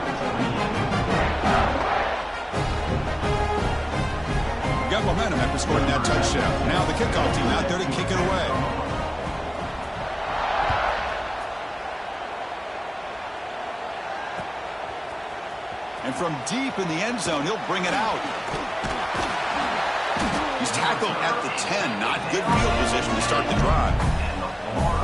Got momentum after scoring that touchdown. Now the kickoff team out there to kick it away. And from deep in the end zone, he'll bring it out. He's tackled at the 10. Not good field position to start the drive.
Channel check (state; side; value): identical; both; correlation 1.00